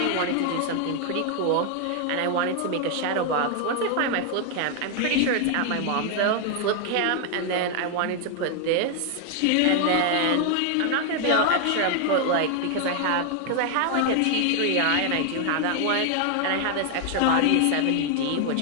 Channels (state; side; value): different; both; correlation 0.00